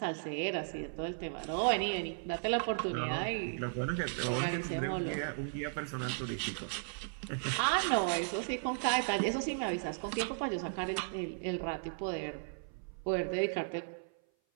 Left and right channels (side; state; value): left; silent; 54 dB below the other